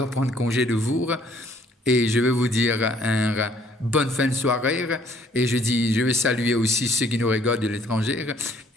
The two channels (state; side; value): normal; both; correlation 0.62